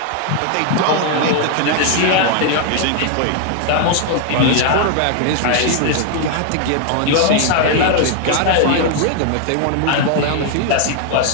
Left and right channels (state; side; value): different; both; correlation 0.00